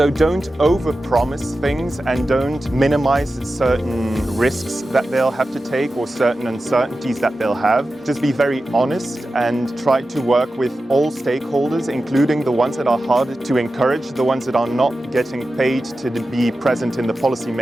don't over-promise things and don't minimize certain risks that they'll have to take or certain uncertainties that they'll have. Just be very honest and try to work with all stakeholders, including the ones that are harder to encourage, the ones that are not getting paid to be present in the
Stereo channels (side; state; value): both; normal; correlation 0.93